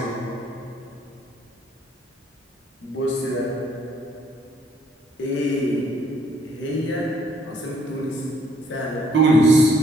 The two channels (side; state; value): both; normal; correlation 0.66